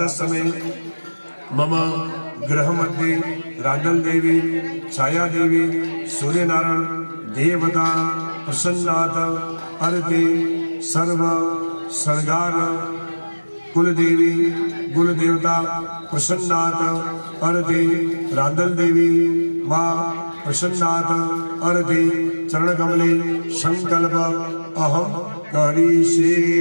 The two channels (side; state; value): both; inverted; correlation -1.00